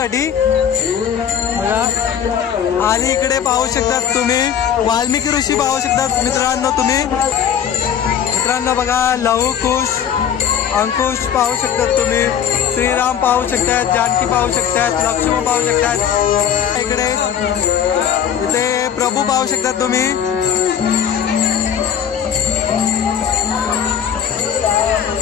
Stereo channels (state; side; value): quieter; right; 8.7 dB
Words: बघा. आणि इकडे पाहू शकतात तुम्ही वाल्मिकी ऋषी पाहू शकतात मित्रांनो तुम्ही. मित्रांनो बघा, लहू कुश अंकुश पाहू शकतात तुम्ही. श्रीराम पाहू शकतात, जानकी पाहू शकतात, लक्ष्मण पाहू शकतात. इकडे इथे प्रभू पाहू शकतात तुम्ही.